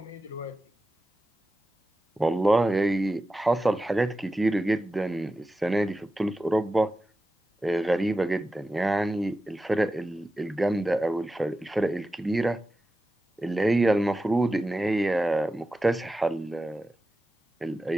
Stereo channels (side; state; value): both; normal; correlation 0.94